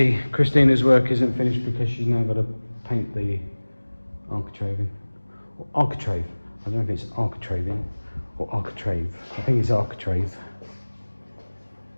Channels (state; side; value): inverted; both; correlation -1.00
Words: Christina's work isn't finished because she's now got to paint the architraving. Or architrave. I don't know if it's architraving or architrave. I think it's architrave.